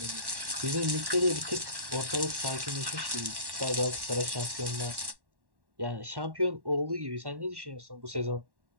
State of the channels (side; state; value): left; late; 1.1 ms